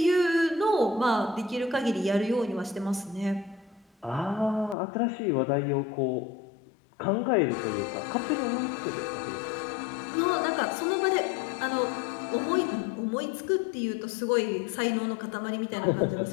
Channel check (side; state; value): right; drops out; at 4.8 s